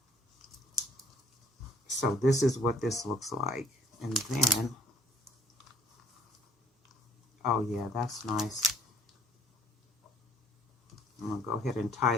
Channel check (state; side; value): normal; both; correlation 0.58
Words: So this is what this looks like. And then, oh yeah, that's nice. I'm going to go ahead and tie